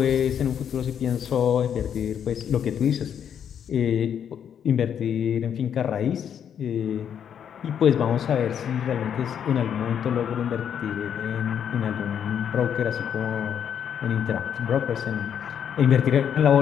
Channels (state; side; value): quieter; right; 8.6 dB